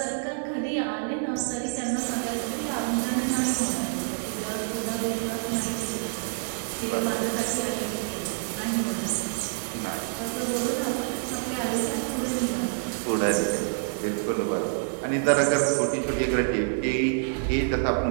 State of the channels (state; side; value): silent; left; 60 dB below the other